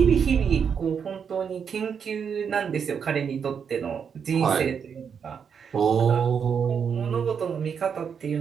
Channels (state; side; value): quieter; left; 7.0 dB